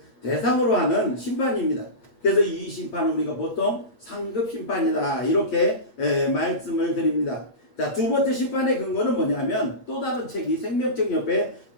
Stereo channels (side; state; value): right; late; 8.5 ms